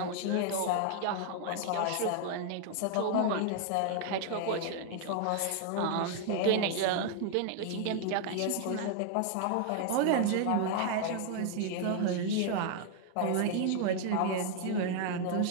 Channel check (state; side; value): different; both; correlation 0.00